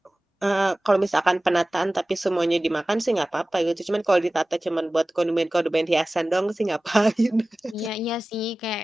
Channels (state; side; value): normal; both; correlation 0.97